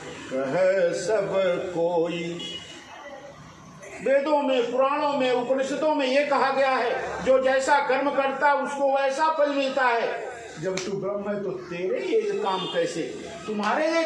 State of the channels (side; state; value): both; identical; correlation 1.00